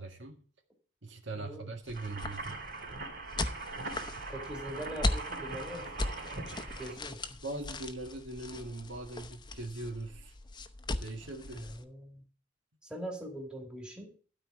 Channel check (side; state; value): both; normal; correlation 0.53